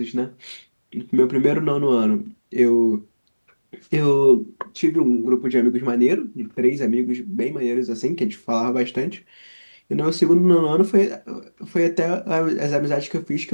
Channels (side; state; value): both; inverted; correlation -1.00